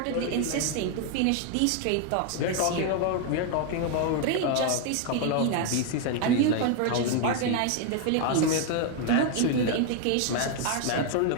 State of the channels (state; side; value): different; both; correlation 0.00